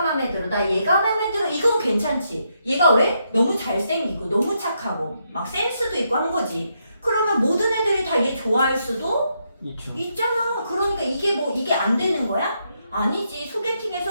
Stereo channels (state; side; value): inverted; both; correlation -0.79